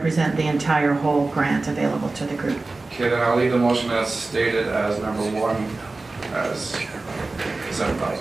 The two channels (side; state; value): left; quieter; 3.4 dB